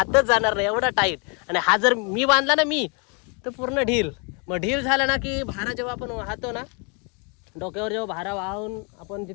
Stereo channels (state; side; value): quieter; right; 34.5 dB